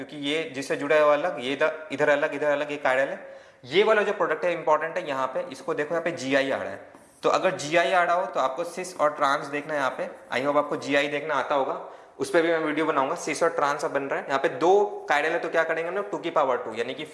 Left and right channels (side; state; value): both; identical; correlation 1.00